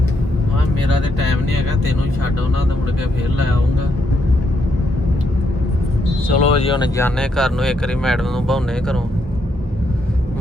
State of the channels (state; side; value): normal; both; correlation 0.77